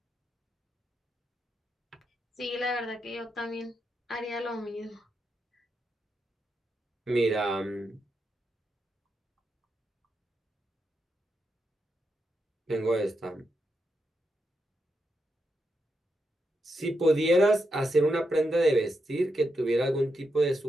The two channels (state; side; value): normal; both; correlation 0.84